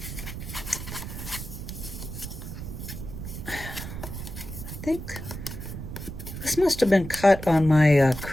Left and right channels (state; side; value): noise; right; rumble, 9 dB below the sound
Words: I think this must have been cut on my